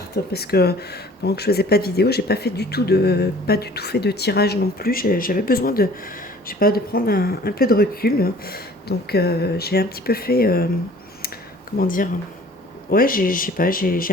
parce que pendant que je faisais pas de vidéo, j'ai pas du tout fait de tirage non plus. J'avais besoin de, je sais pas, de prendre un peu de recul. Donc, j'ai un petit peu fait, comment dire, ouais, je sais pas, j'ai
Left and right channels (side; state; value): both; normal; correlation 0.50